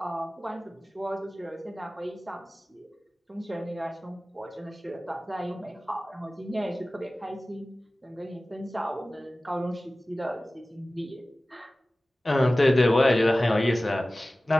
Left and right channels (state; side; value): normal; both; correlation 0.97